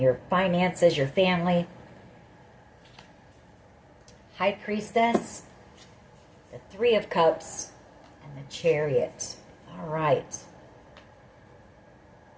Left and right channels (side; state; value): both; identical; correlation 1.00